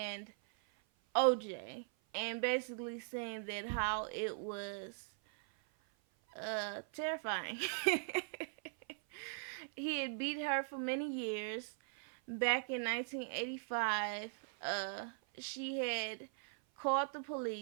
OJ, and basically saying that how it was terrifying. He had beat her for many years. Back in 1985, she had called the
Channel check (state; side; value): silent; left; 51 dB below the other